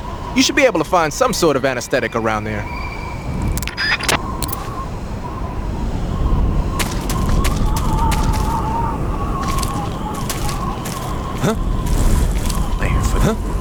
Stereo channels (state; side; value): identical; both; correlation 1.00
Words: You should be able to find some sort of anesthetic around there.